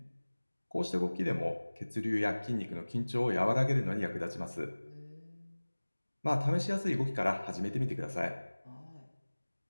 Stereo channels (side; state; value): both; inverted; correlation -1.00